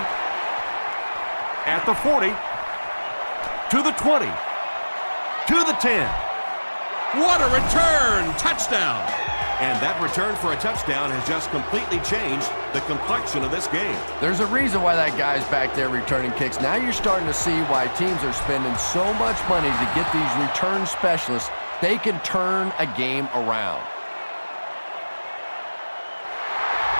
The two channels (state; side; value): inverted; both; correlation -1.00